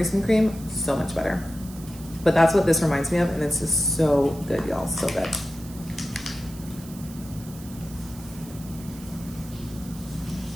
and cream. So much better. But that's what this reminds me of. And it's just so good, y'all. So good.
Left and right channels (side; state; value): right; noise; hiss, 18 dB below the sound